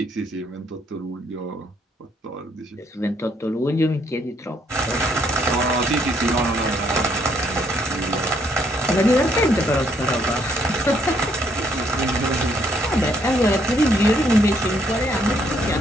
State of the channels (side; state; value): both; normal; correlation 0.70